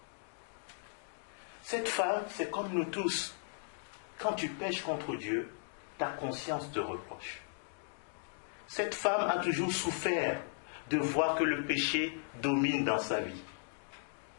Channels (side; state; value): right; silent; digital silence